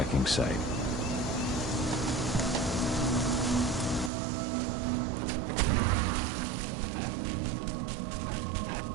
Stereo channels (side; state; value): left; drops out; at 4.1 s